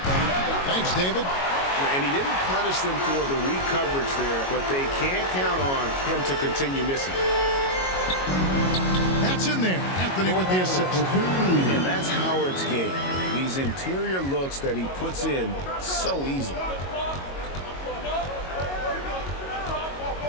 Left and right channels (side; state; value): right; late; 22 ms